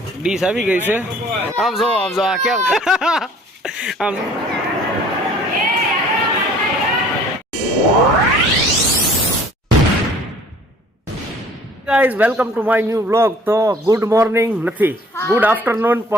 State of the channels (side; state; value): both; normal; correlation 0.53